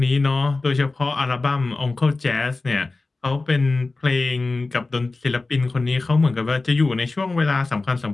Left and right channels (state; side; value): quieter; right; 3.4 dB